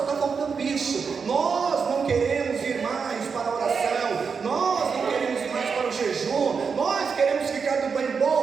está faltando isso. Nós não queremos ir mais para a oração, nós não queremos ir mais para o jejum, nós queremos ficar do bem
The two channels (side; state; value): left; quieter; 5.7 dB